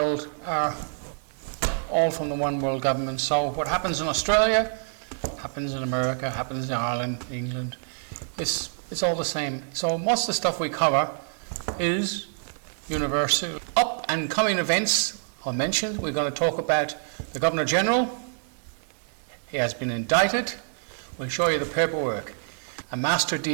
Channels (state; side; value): silent; left; 57 dB below the other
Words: are all from the one world government. So what happens in Australia, happens in America, happens in Ireland, England. It's all the same. So most of the stuff we cover is universal. Up and coming events I mentioned, we're going to talk about the Governor General. He has been indicted. We'll show you the paperwork. A master